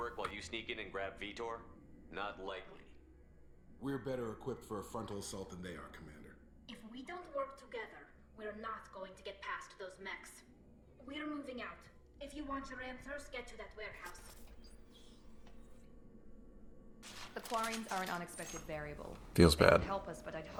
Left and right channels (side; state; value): both; identical; correlation 1.00